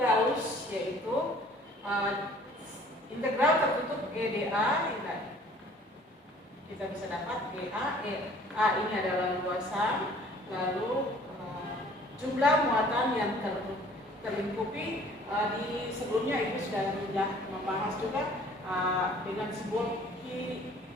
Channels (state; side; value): normal; both; correlation 0.53